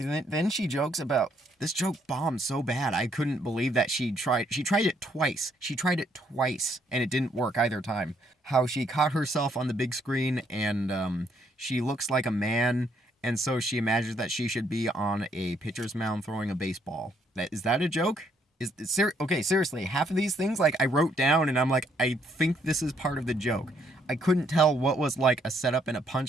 she jokes about, this joke bombed so bad, I couldn't believe that she tried it twice. She tried it twice, and it didn't work either time. how she caught herself on the big screen and she looks like a man, and so she imagines that she should be on a pitcher's mound throwing a baseball. Is that a joke? Okay, seriously, half of these things, like, I wrote down and I'm like, I think this is part of the joke. I couldn't tell what was like a setup and a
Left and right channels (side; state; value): both; normal; correlation 0.70